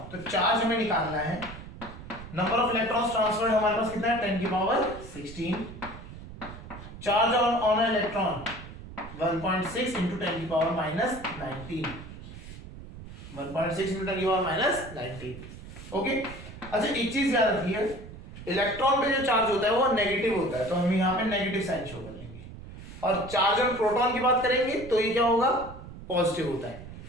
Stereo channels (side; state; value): right; noise; rumble, 14 dB below the sound